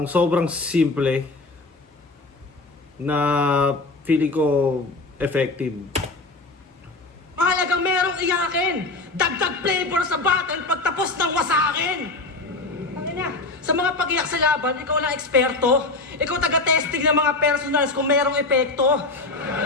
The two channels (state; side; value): quieter; right; 3.3 dB